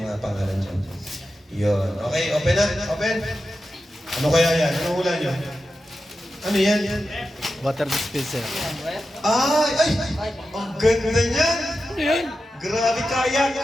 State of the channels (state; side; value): normal; both; correlation 0.91